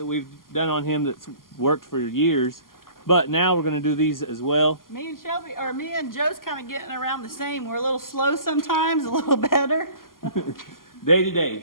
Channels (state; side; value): late; right; 0.91 ms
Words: we've done on him that's worked for years. But now we're going to do these as well. Me and Joe's kind of getting around the same. We're a little slow sometimes, a little better. Day to